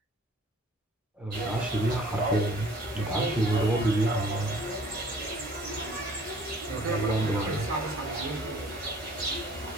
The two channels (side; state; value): both; normal; correlation 0.53